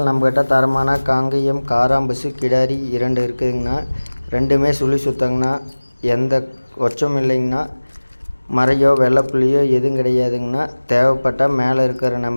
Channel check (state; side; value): inverted; both; correlation -1.00